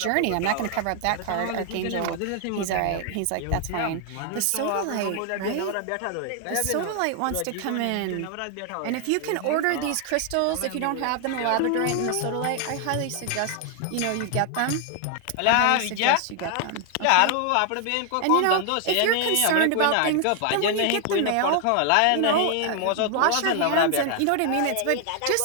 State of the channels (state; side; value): different; both; correlation 0.00